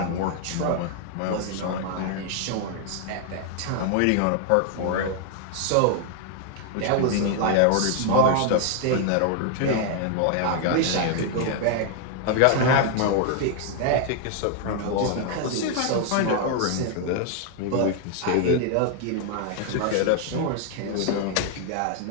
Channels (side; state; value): both; different; correlation 0.00